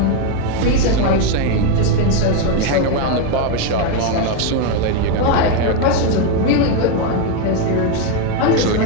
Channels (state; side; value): different; both; correlation 0.02